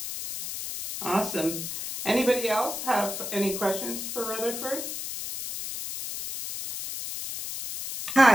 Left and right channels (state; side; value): noise; left; hiss, 6 dB below the sound